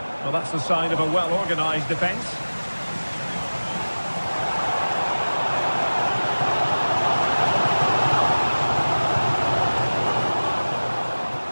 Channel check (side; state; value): both; inverted; correlation -1.00